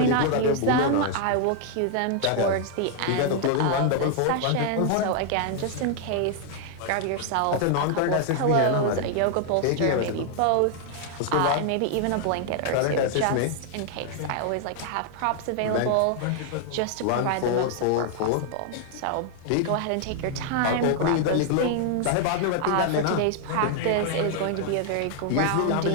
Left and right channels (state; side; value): different; both; correlation 0.00